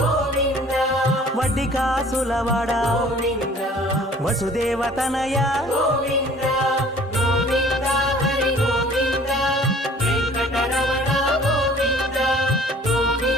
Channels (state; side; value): normal; both; correlation 0.52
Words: వడ్డికాసులవాడ గోవింద వసుదేవతనయ గోవింద గోవింద హరి గోవింద వెంకటరమణ గోవింద